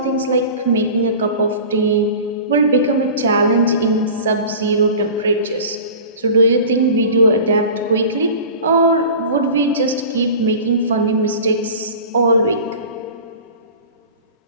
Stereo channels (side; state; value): both; inverted; correlation -0.38